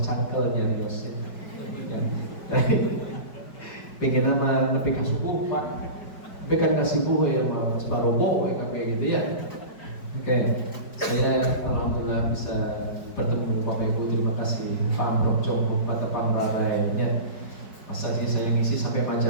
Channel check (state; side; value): late; right; 5.0 ms